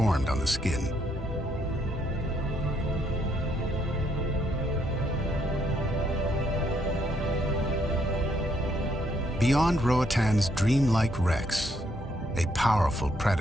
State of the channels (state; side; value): normal; both; correlation 0.73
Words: on the skin. Beyond Roatan's dreamlike wrecks, a powerful